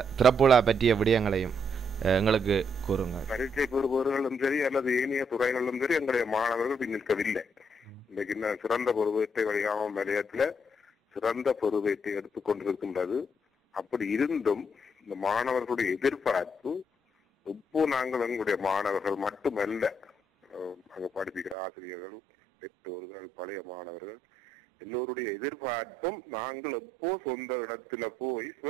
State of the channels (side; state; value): left; drops out; at 21.6 s